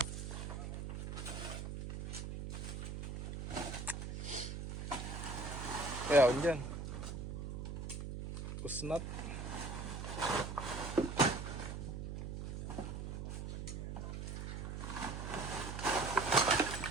Kaya ako dyan. Kusnat.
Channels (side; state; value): right; noise; hum, 5 dB below the sound